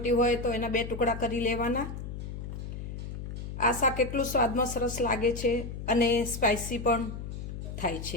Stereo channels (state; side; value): noise; left; hum, 7 dB below the sound